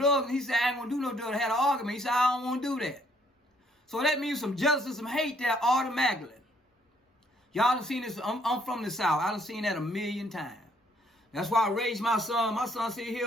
And he said, I ain't going to do no drugs. They had an argument. He said, I don't want to do that. So that means some jealousy, some hate there automatically. Y'all done seen this. I'm from the South. I done seen that a million times. That's why I raised my son. My son sit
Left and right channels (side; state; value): both; normal; correlation 0.66